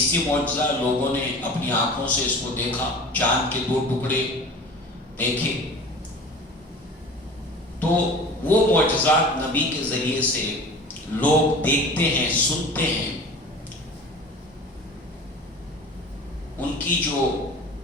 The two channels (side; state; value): both; normal; correlation 0.39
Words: معجزہ، لوگوں نے اپنی آنکھوں سے اس کو دیکھا، چاند کے 2 ٹکڑے دیکھے۔ تو وہ معجزات نبی کے ذریعے سے لوگ دیکھتے ہیں، سنتے ہیں، ان کی جو